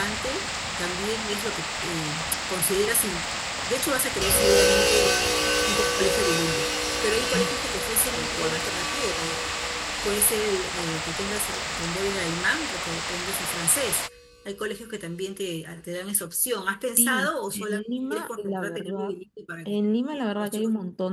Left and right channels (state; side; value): identical; both; correlation 1.00